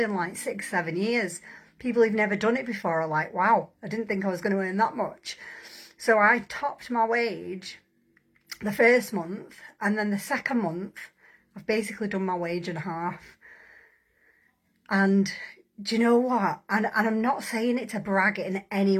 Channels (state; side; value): identical; both; correlation 1.00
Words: like 6-7 years. People who've never done it before are like, wow, I didn't think I was going to earn that much. So I topped my wage the first month, and then the second month I've basically done my wage in half. And do you know what? And I'm not saying it to brag in any